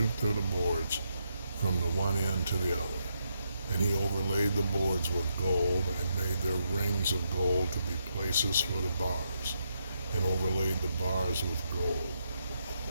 through the boards from the one end to the other. And he overlaid the boards with gold, and made their rings of gold to be places for the bars, and overlaid the bars with gold.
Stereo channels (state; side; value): inverted; both; correlation -0.79